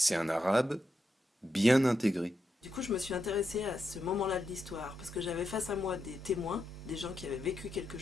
un arabe bien intégré. Du coup, je me suis intéressée à ce moment-là de l'histoire parce que j'avais face à moi des témoins, des gens qui avaient vécu quelque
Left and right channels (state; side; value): normal; both; correlation 0.85